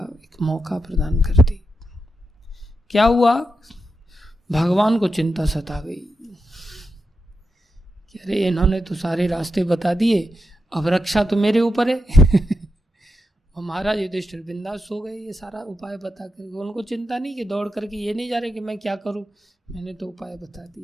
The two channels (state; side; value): normal; both; correlation 0.87